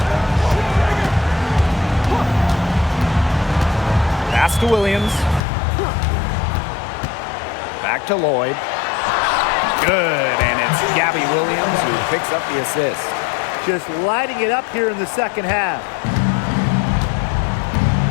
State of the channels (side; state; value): right; drops out; at 5.4 s